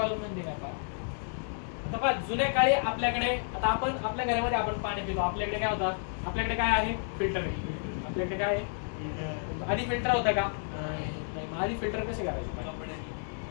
म्हणजे काय पहा, आता पहा जुन्या काळी आपल्याकडे, आता आपण आपल्या घरामध्ये आपण पाणी पितो, आपल्याकडे काय होतं, आपल्याकडे काय आहे, फिल्टर आहे. आपल्याकडे काय आहे, आधी फिल्टर होता का, नाही. आधी फिल्टर कसे करायचे,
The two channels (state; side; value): silent; right; digital silence